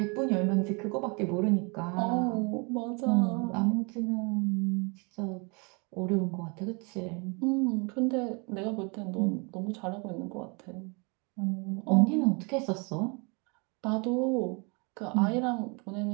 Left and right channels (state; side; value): quieter; left; 31.8 dB